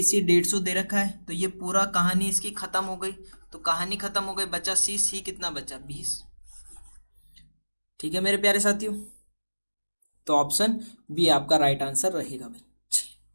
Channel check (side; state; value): both; inverted; correlation -1.00